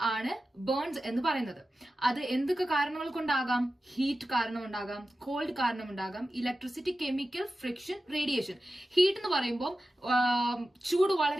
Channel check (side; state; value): both; normal; correlation 0.93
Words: ആണ് burns എന്ന് പറയുന്നത്. അത് എന്തൊക്കെ കാരണങ്ങൾ കൊണ്ടാകാം? ഹീറ്റ് കാരണം ഉണ്ടാകാം, കോൾഡ് കാരണം ഉണ്ടാകാം, electricity, chemical, friction, radiation. Heat എന്ന് പറയുമ്പോൾ ചൂട്